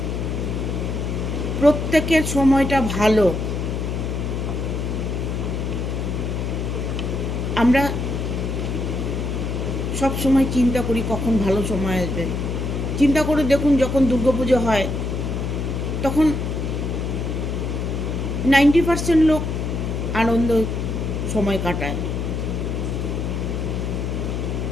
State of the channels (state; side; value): noise; left; hum, 2 dB below the sound